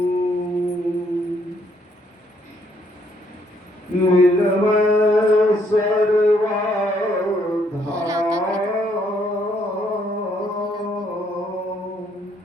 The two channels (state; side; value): normal; both; correlation 0.70